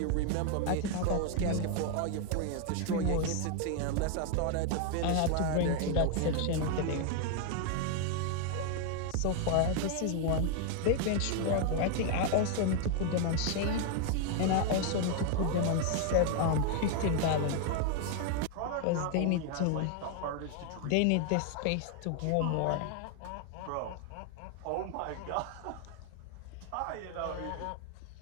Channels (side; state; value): both; different; correlation 0.00